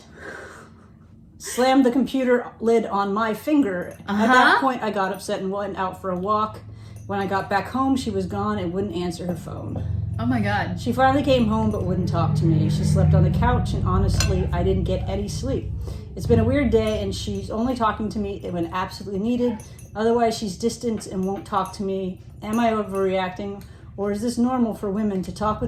Slammed the computer lid on my finger. At that point, I got upset and went out for a walk. When I got back home, she was gone and wouldn't answer her phone. Oh my God. She finally came home but wouldn't talk to me. She slept on the couch and honestly, I didn't get any sleep. It's been a weird day and she's only talking to me when absolutely needed. Otherwise, she's distant and won't talk to me. Am I overreacting? Or is this normal for women to talk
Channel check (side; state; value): both; identical; correlation 1.00